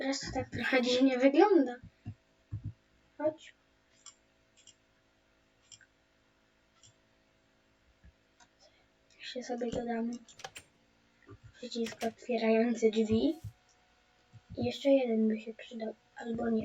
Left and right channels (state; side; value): identical; both; correlation 1.00